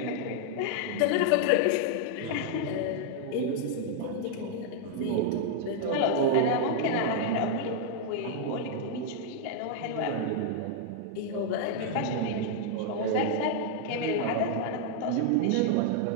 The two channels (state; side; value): different; both; correlation 0.00